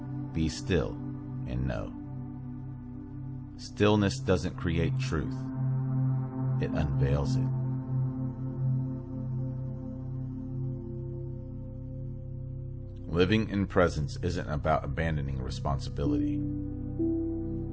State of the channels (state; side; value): identical; both; correlation 1.00